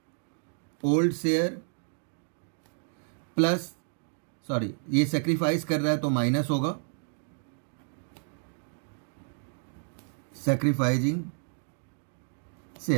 old share plus, sorry ये सेक्रीफाइस कर रहा है तो माइनस होगा, सेक्रीफाइसिंग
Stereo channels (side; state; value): left; silent; digital silence